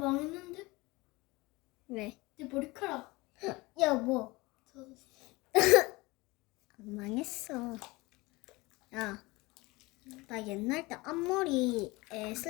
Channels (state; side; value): quieter; right; 22.6 dB